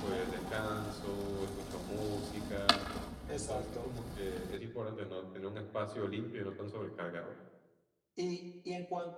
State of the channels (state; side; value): identical; both; correlation 1.00